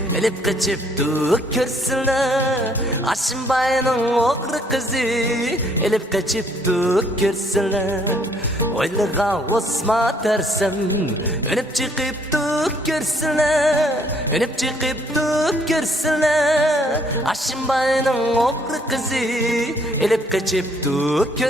elip kaçıp duk görseler. Aşımbay'ın oğru kızı elip kaçıp duk görseler. Oylığa osma dersen önüp çıkıp duk görseler, önüp çıkıp duk görseler. Aşımbay'ın oğru kızı elip kaçıp duk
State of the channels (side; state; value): both; normal; correlation 0.65